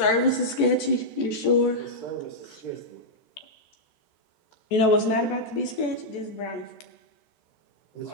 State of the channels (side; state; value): right; late; 14 ms